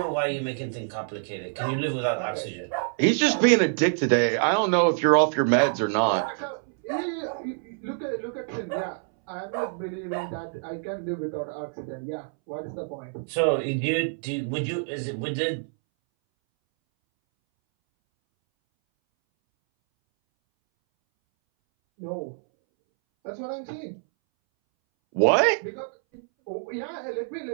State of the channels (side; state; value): left; silent; 61 dB below the other